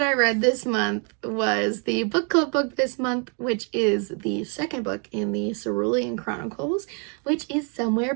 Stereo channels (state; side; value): quieter; left; 38.3 dB